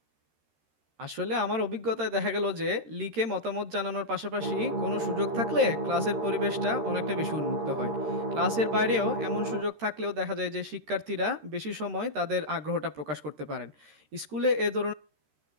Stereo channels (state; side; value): late; left; 13 ms